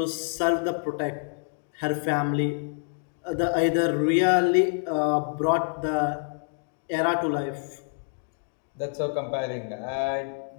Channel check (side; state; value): right; silent; digital silence